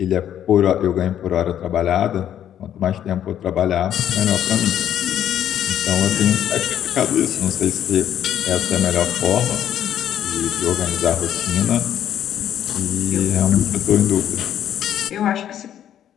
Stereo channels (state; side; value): quieter; right; 10.5 dB